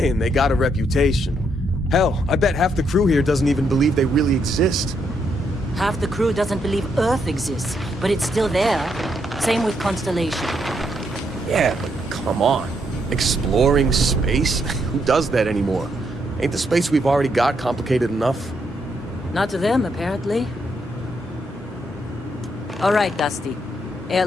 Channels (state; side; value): normal; both; correlation 0.76